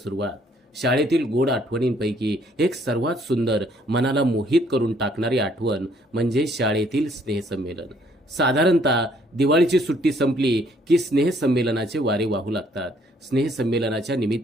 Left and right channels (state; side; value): normal; both; correlation 0.65